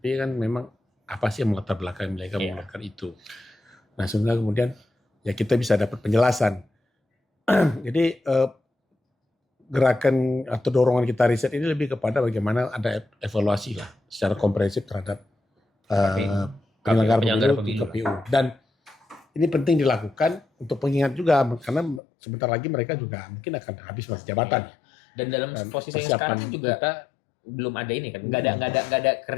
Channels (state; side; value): drops out; right; at 22.0 s